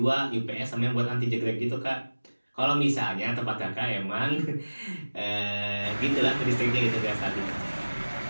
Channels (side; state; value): both; inverted; correlation -1.00